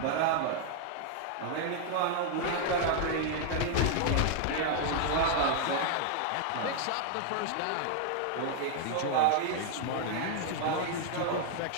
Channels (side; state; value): both; different; correlation 0.00